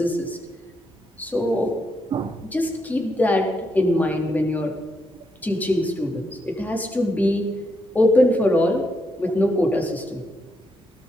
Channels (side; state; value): both; normal; correlation 0.80